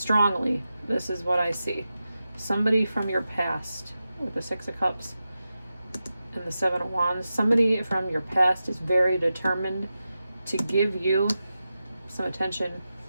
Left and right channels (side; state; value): both; inverted; correlation -0.92